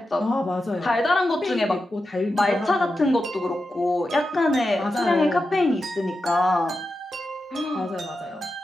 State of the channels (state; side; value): normal; both; correlation 0.90